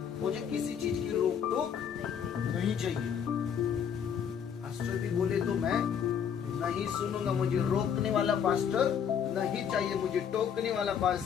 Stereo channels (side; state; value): right; quieter; 7.9 dB